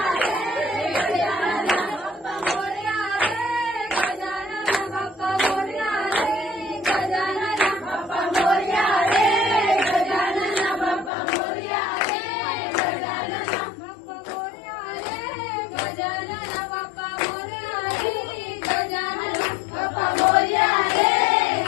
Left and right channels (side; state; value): right; drops out; at 11.1 s